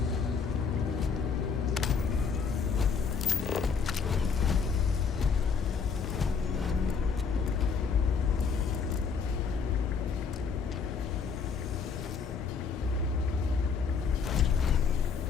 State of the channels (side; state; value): right; quieter; 5.8 dB